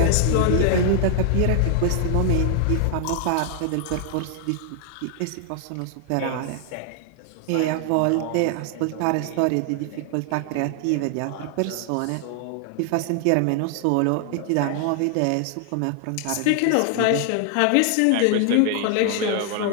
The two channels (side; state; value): both; different; correlation 0.00